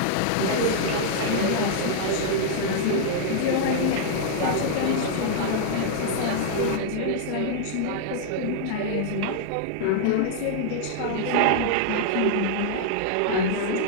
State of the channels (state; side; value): different; both; correlation -0.01